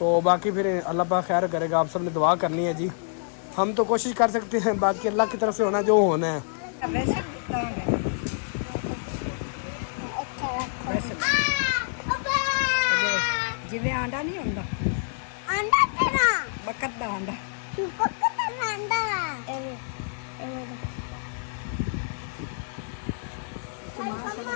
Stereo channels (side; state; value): right; silent; digital silence